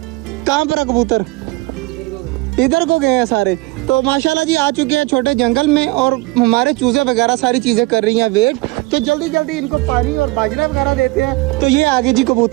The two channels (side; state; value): left; quieter; 21.6 dB